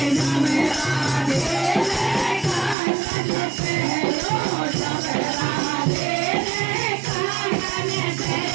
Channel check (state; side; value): drops out; left; at 2.8 s